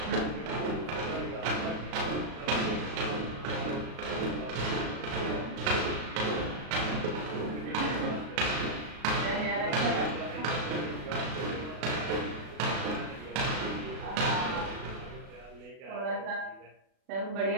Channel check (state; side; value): late; left; 36 ms